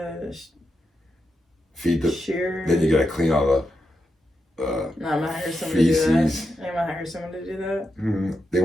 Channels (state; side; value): normal; both; correlation 0.86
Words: Feed the. shear. Then you gotta clean all the. No, I'm gonna hire someone to do that. feces. I'm gonna hire someone to do that. They